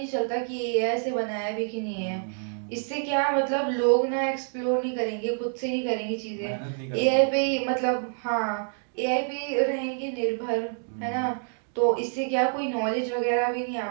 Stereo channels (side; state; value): left; silent; 60 dB below the other